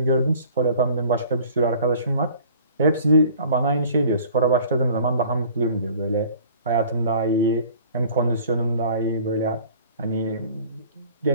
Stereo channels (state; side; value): inverted; both; correlation -0.50